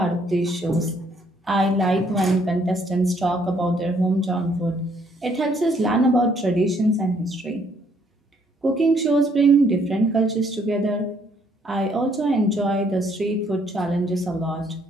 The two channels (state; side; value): normal; both; correlation 0.67